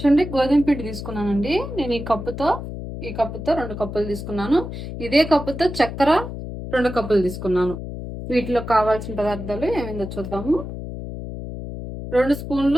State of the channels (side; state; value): left; noise; hum, 8 dB below the sound